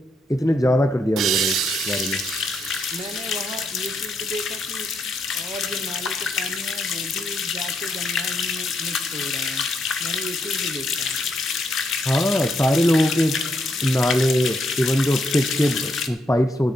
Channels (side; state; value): both; normal; correlation 0.78